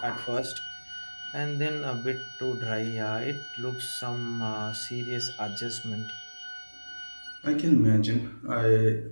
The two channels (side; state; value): both; inverted; correlation -1.00